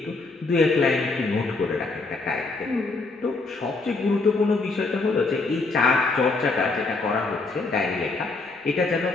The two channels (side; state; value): right; quieter; 3.6 dB